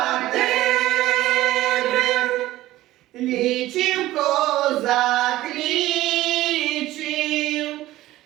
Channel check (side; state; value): left; quieter; 15.9 dB